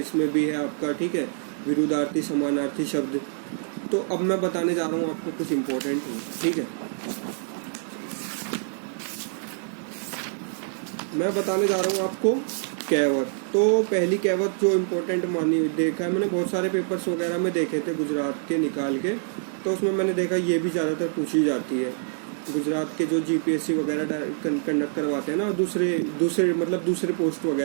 भी है आपका, ठीक है। विरुद्धार्थी समानार्थी शब्द। तो अब मैं बताने जा रहा हूँ आपको कुछ इम्पोर्टेंट, ठीक है। मैं बताने जा रहा हूँ आपको कहावत। तो पहली कहावत जो इम्पोर्टेंट मानी देखा है मैंने, बहुत सारे पेपर्स वगैरह में देखे थे गुजरात के निकाल के, तो उसमें मैंने देखा ये भी ज़्यादातर पूछी जाती है। गुजरात के जो जीपीएससी वगैरह कंडक्ट करवाते हैं ना, दूसरे पोस्ट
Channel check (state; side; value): silent; left; digital silence